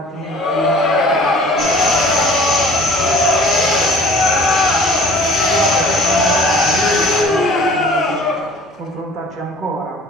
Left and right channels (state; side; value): normal; both; correlation 0.49